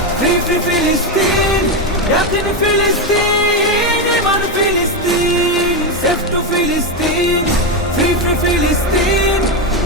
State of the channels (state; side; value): normal; both; correlation 0.09